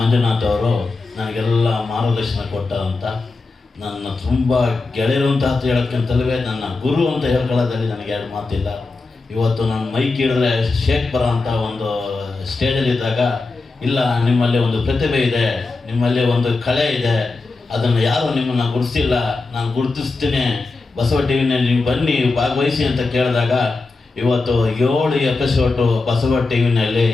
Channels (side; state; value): right; quieter; 3.6 dB